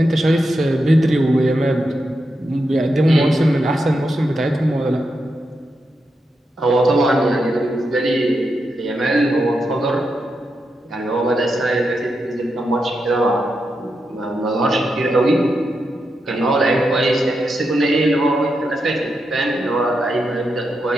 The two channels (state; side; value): normal; both; correlation 0.85